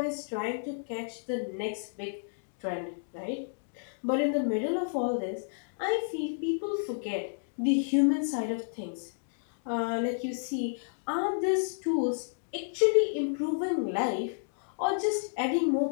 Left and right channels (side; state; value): right; silent; digital silence